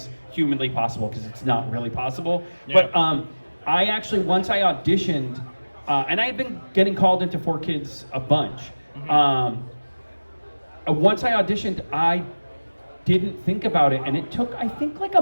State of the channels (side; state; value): both; inverted; correlation -1.00